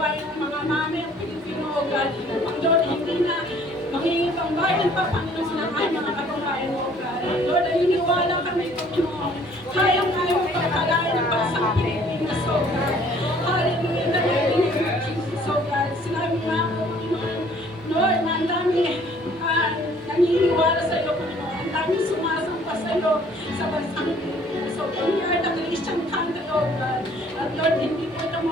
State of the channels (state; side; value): normal; both; correlation 0.57